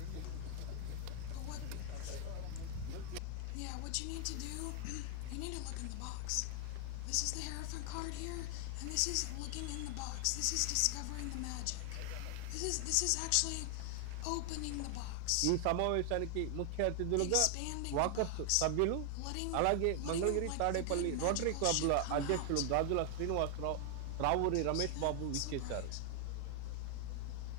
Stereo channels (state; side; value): different; both; correlation 0.00